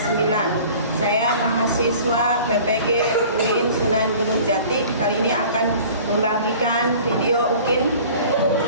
Saya mahasiswa PPG UIN Sunan Gunung Jati. Kali ini akan membagikan video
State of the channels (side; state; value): both; inverted; correlation -0.45